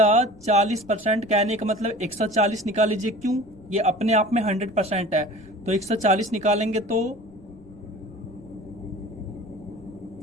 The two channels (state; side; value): noise; left; rumble, 23 dB below the sound